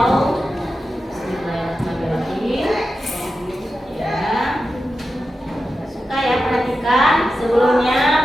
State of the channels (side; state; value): both; normal; correlation 0.91